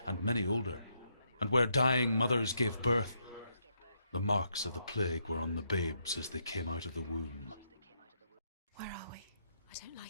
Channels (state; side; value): inverted; both; correlation -0.77